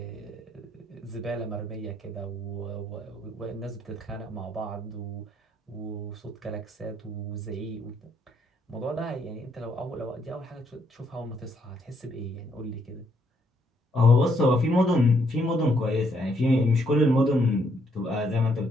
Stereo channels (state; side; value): normal; both; correlation 0.72